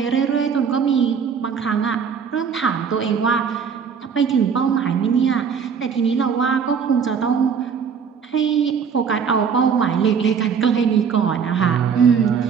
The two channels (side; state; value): left; quieter; 6.6 dB